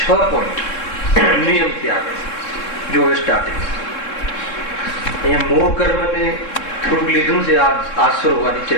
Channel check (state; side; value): late; right; 3.7 ms